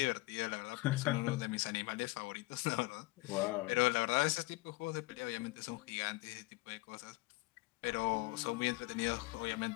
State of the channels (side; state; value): right; quieter; 22.5 dB